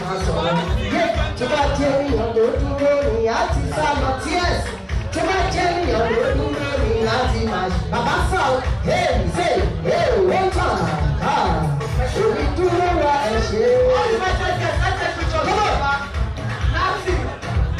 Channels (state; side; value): identical; both; correlation 1.00